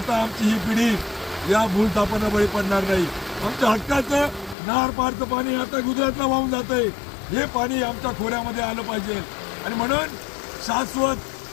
आमची ही पिढी या भूलथापांना बळी पडणार नाही. आमच्या हक्काचं नार पारचं पाणी आता गुजरातला वाहून जातंय, हे पाणी आमच्या खोऱ्यामध्ये आलं पाहिजे आणि म्हणून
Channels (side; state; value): right; drops out; at 4.5 s